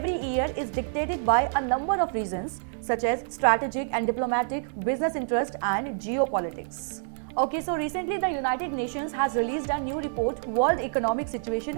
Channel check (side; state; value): left; silent; digital silence